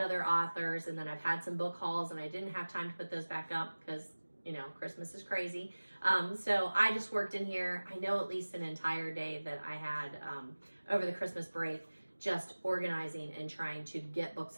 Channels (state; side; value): inverted; both; correlation -1.00